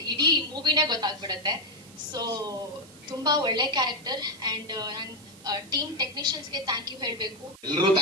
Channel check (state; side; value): noise; right; hiss, 22 dB below the sound